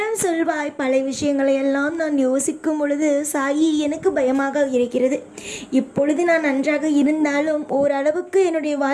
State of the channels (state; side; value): identical; both; correlation 1.00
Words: சொல்வாய், பழைய விஷயங்களை எல்லாம் நான் யோசிக்கும் பொழுது சாயி எனக்கு பயமாக இருக்கிறது. இப்பொழுது நான் நன்றாக இருந்தாலும் ஓரளவுக்கு என்னுடைய